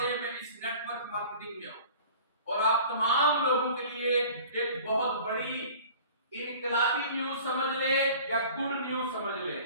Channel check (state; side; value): inverted; both; correlation -0.45